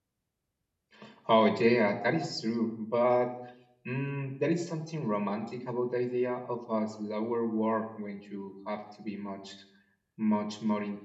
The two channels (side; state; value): both; identical; correlation 1.00